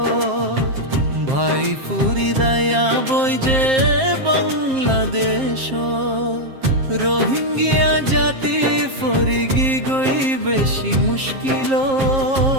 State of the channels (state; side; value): late; left; 7.5 ms